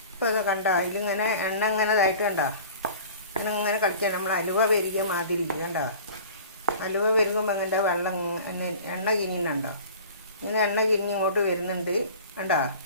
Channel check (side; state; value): both; inverted; correlation -0.43